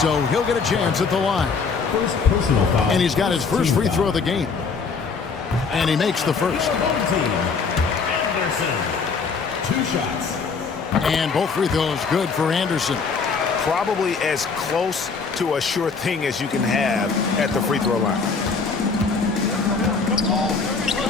he'll get a chance at the line. First personal foul. And he's got his first free throw of the game. And he makes the first. Anderson. 2 shots. And both free throws good for Anderson. Probably as close to a sure thing as you can have at the free throw line.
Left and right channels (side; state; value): right; quieter; 5.0 dB